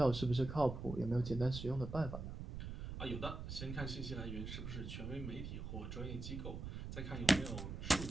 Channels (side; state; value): right; noise; rumble, 6 dB below the sound